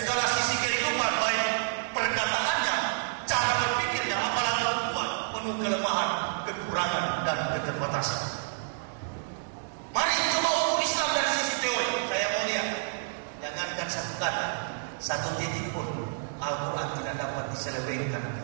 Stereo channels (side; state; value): left; silent; digital silence